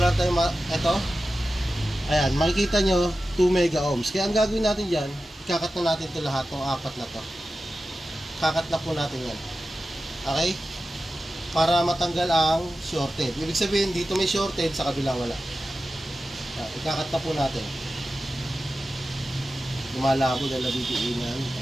tayong ito. Ayan, makikita nyo 2 mega ohms. Kaya ang gagawin natin dyan, ikakat na natin ito lahat, ng apat na to. Kakat na po natin yan. Okay? Para matanggal ang shorted. Ibig sabihin, dito may shorted, sa kabila wala. Ikakat na po natin. lumalabo dahil nabibiinan.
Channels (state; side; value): normal; both; correlation 0.93